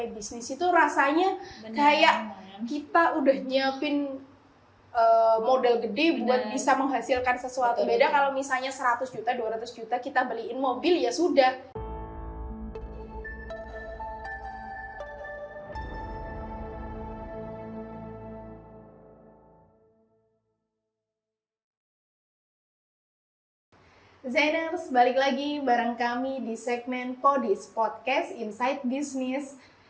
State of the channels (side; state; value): both; identical; correlation 1.00